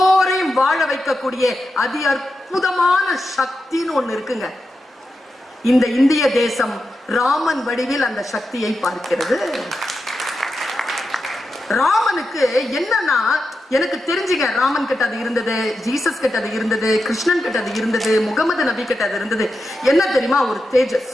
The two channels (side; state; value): both; normal; correlation 0.89